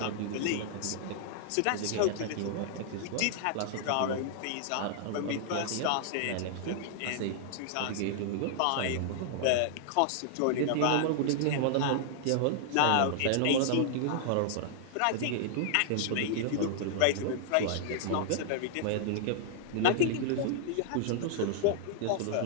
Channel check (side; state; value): both; different; correlation -0.01